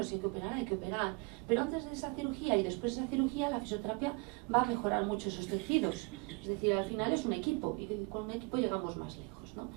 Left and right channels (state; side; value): quieter; left; 29.5 dB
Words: Si hay que operar, hay que operar. Pero antes de esa cirugía y después de esa cirugía, la fisioterapia va a mejorar mucho esos tejidos. Es decir, al final es un equipo, y con un equipo llegamos más lejos, ¿no?